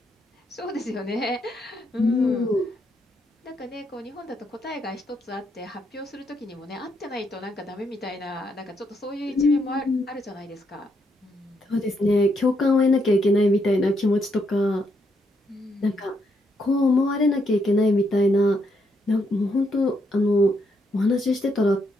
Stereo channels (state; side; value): normal; both; correlation 0.77